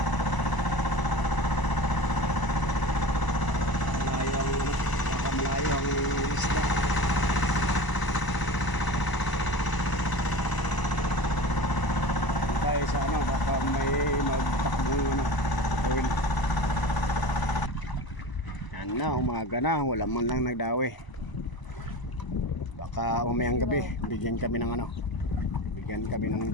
Malayo ang isda. Kaya sa baka may magtakbong oil. Yan na, umaga na, wala man lang nagdawi. Baka mamayang gabi bigyan kami ng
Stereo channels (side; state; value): right; late; 1.0 ms